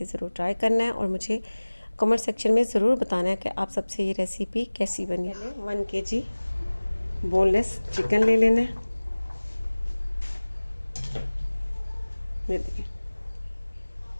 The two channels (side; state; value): both; inverted; correlation -1.00